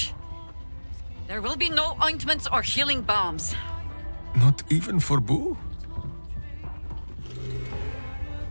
There will be no ointments or healing balms. Not even for Boo?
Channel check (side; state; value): both; inverted; correlation -1.00